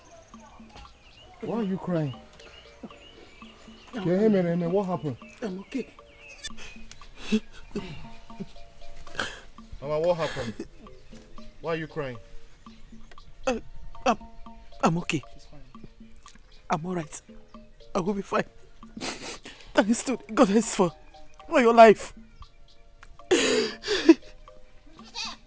Why are you crying? What happened? I'm okay. Mama, what happened? Why are you crying? I'm okay. I'm alright. I will be fine. Thanks to the goddess for your life.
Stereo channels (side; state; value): both; identical; correlation 1.00